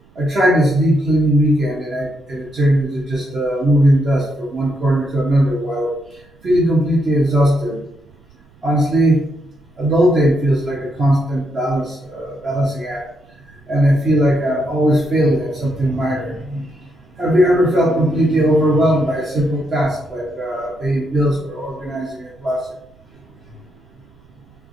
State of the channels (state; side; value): noise; right; rumble, 29 dB below the sound